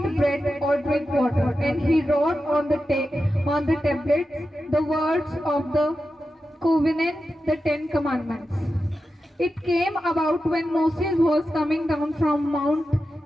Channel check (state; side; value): normal; both; correlation 0.91